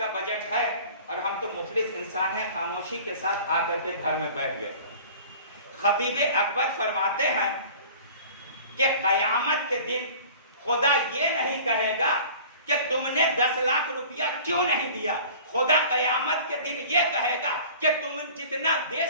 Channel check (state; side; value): inverted; both; correlation -0.44